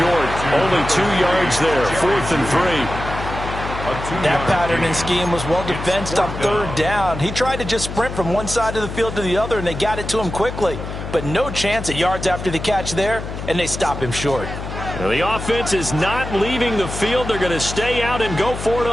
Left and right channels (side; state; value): left; noise; hum, 7 dB below the sound